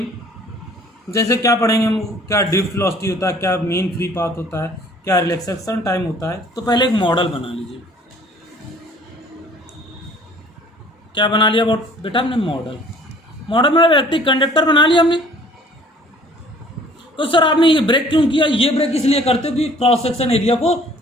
जैसे क्या पढ़ेंगे हम? क्या ड्रिफ्ट वेलोसिटी होता है, क्या मीन फ्री पाथ होता है, क्या रिलैक्सेशन टाइम होता है। तो पहले एक मॉडल बना लीजिए। क्या बना लिया बेटा हमने? मॉडल में इलेक्ट्रिक कंडक्टर बना लिया हमने। तो सर आपने ये ब्रेक क्यों किया? ये ब्रेक इसलिए करते हो कि क्रॉस सेक्शन एरिया को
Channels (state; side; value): normal; both; correlation 0.54